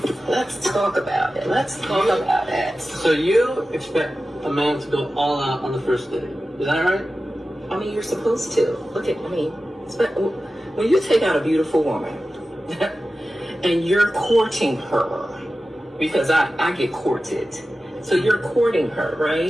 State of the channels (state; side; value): normal; both; correlation 0.94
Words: let's talk about it. Let's talk about it. So you expect a man to go all out on the first date? Is that right? I mean, you're supposed to. When you take out a beautiful woman and you're courting her, because I get courted. So you're courting her,